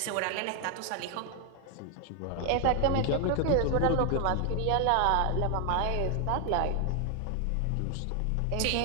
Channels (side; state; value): both; different; correlation 0.00